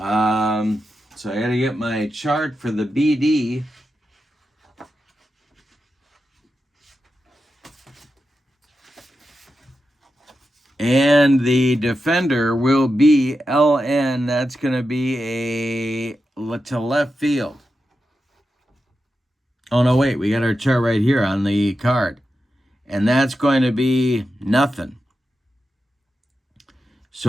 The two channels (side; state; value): both; normal; correlation 0.89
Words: I got to get my chart for the BD. And the defender will be LN. That's going to be to left field. Oh, no, wait. We got our chart right here on the card. And that's going to be nothing.